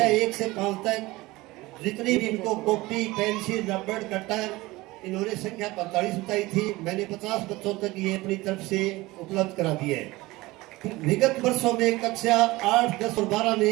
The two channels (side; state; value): left; quieter; 20.3 dB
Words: 1 से 5 तक जितनी भी इनको कॉपी, पेंसिल, रबड़, कटर, इन्होंने संख्या 45 बताई थी, मैंने 50 बच्चों तक ये अपनी तरफ से उपलब्ध करा दिए है। विगत वर्षों में कक्षा 8, 10 और 12